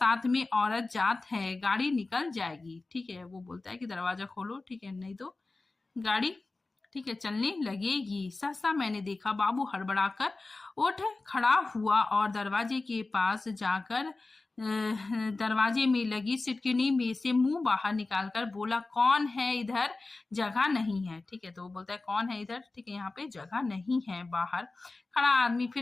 में औरत जात है, गाड़ी निकल जाएगी। ठीक है, वो बोलता है कि दरवाजा खोलो, ठीक है, नहीं तो गाड़ी, ठीक है, चलने लगेगी। सहसा मैंने देखा, बाबू हड़बड़ाकर उठ खड़ा हुआ और दरवाजे के पास जाकर दरवाजे में लगी सिटकिनी में से मुंह बाहर निकालकर बोला, कौन है इधर, जगह नहीं है। ठीक है, तो वो बोलता है कौन है इधर, ठीक है, यहाँ पे जगह नहीं है। बाहर खड़ा आदमी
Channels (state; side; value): quieter; right; 3.4 dB